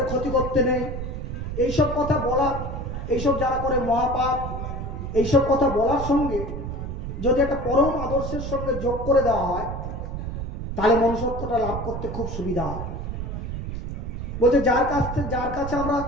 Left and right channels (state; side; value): noise; right; rumble, 5 dB below the sound